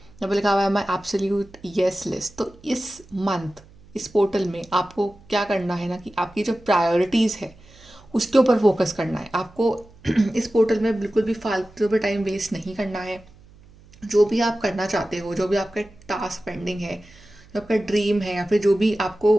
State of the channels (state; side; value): noise; right; hum, 25 dB below the sound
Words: पे लिखा हुआ है माई एब्सोल्यूट यस लिस्ट। तो इस मंथ इस पोर्टल में आपको क्या करना है ना कि आपकी जो प्रायोरिटीज़ है उसके ऊपर फोकस करना है आपको। इस पोर्टल में बिल्कुल भी फालतू पे टाइम वेस्ट नहीं करना है। जो भी आप करना चाहते हो, जो भी आपका टास्क पेंडिंग है, जो आपका ड्रीम है या फिर जो भी आपको